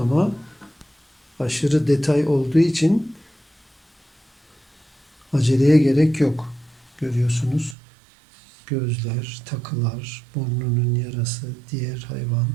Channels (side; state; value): left; drops out; at 7.8 s